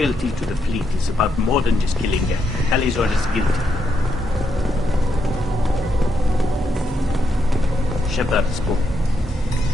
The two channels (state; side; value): normal; both; correlation 0.80